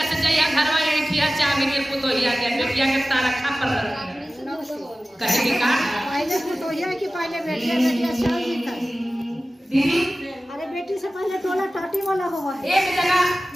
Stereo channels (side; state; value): both; normal; correlation 0.96